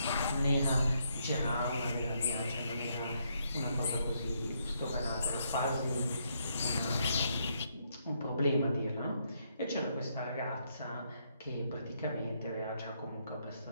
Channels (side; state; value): both; inverted; correlation -0.75